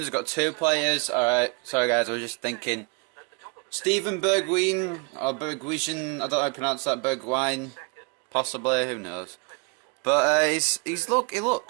we've got 2 players. Alright, sorry guys, I was just thinking. Steven Bergwijn, or Bergwijn, I don't know how to pronounce that, Bergwijn, possibly, who knows. But he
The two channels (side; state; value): left; quieter; 32.4 dB